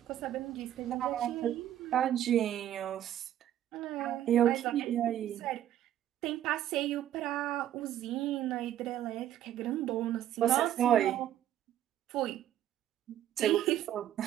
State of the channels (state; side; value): quieter; left; 11.8 dB